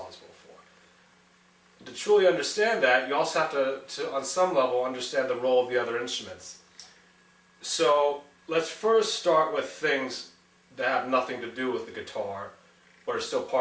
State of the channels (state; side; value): identical; both; correlation 1.00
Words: for. To truly understand that, you also have to on some level, understand the role of the other instruments. So let's first start with things that have nothing to do with the guitar, but are still